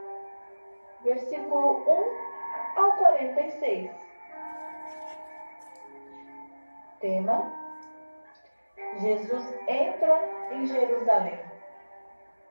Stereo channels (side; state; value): both; inverted; correlation -1.00